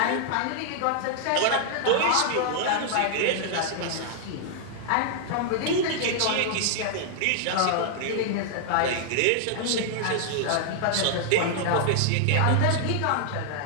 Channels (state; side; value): different; both; correlation 0.00